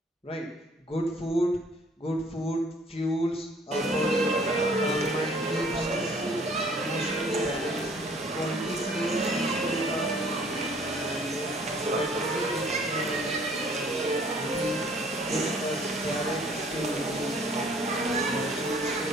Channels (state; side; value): normal; both; correlation 0.57